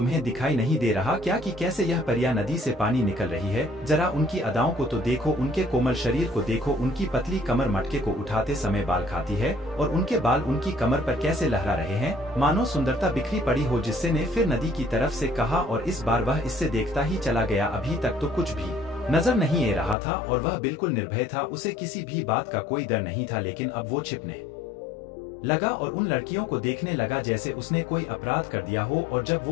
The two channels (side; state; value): right; drops out; at 20.0 s